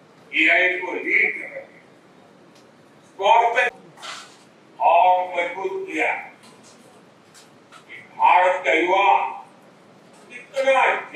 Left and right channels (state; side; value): identical; both; correlation 1.00